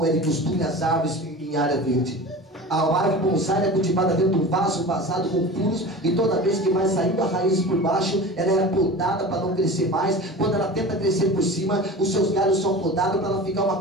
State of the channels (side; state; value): both; normal; correlation 0.35